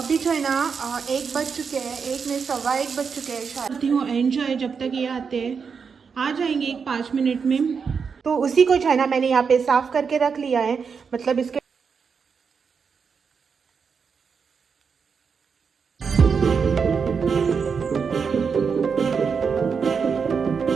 जो है ना 1 बज चुके हैं, 1 में 1:15 बज चुके हैं शायद। करती हूँ एंजॉय जब तक ये आते हैं, आ जाएंगे 5 मिनट में। तो उसी को जो है ना मैंने यहाँ पे साफ करके रख लिया है, मतलब इसके।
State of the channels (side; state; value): left; quieter; 5.9 dB